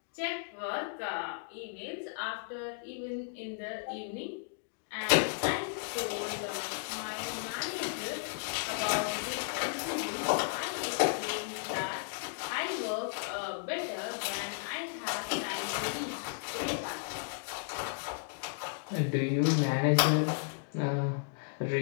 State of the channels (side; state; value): right; silent; digital silence